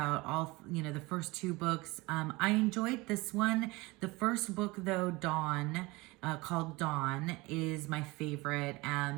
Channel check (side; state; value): left; quieter; 22.9 dB